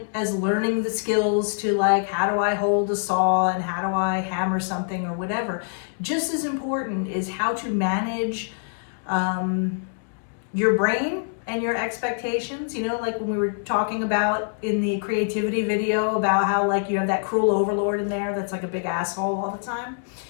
as learning the skills to how do I hold a saw and how do I hammer something or whatever, just as important is how to manage your brain and your expectations, like when we were talking about in the creativity video about how you have that cruel overlord in there that's like a big asshole all the time.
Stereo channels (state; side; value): silent; right; digital silence